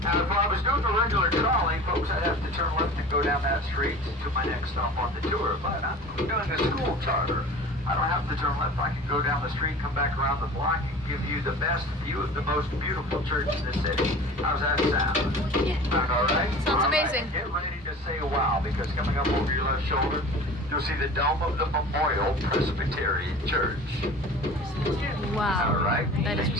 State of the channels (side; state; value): both; normal; correlation 0.40